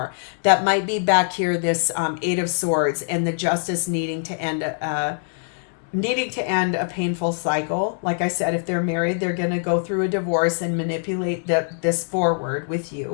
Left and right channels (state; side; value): silent; right; 63 dB below the other